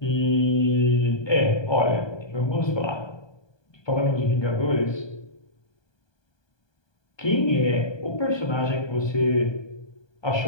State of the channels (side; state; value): right; late; 1.2 ms